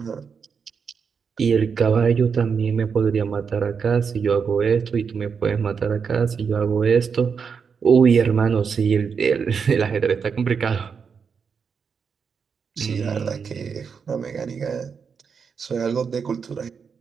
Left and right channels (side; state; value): left; quieter; 6.1 dB